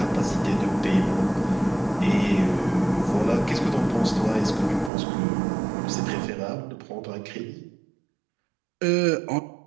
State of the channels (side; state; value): left; drops out; at 4.9 s